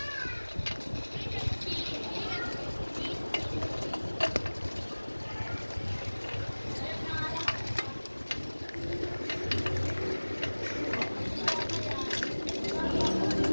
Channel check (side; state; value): both; inverted; correlation -1.00